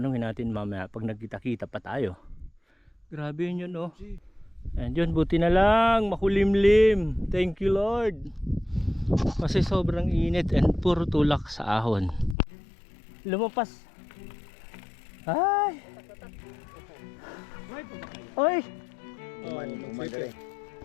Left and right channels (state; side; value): drops out; right; at 12.4 s